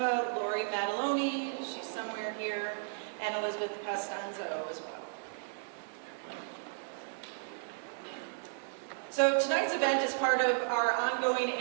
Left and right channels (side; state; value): left; silent; digital silence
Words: Lori Mataloni, she's somewhere here, and Elizabeth Costanzo as well. So tonight's event is part of our ongoing